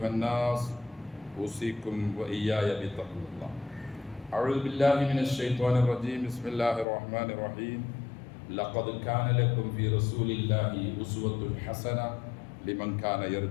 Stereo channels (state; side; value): drops out; right; at 6.9 s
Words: الناس أوصيكم وإياي بتقوى الله أعوذ بالله من الشيطان الرجيم بسم الله الرحمن الرحيم لقد كان لكم في رسول الله أسوة حسنة لمن كان